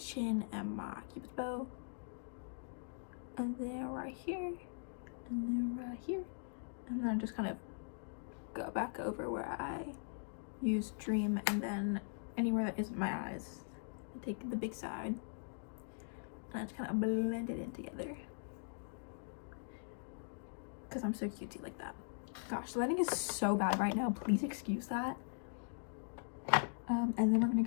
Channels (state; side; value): silent; right; digital silence